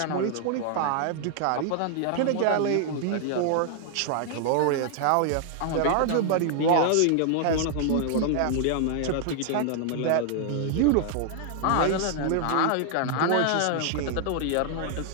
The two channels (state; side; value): different; both; correlation 0.00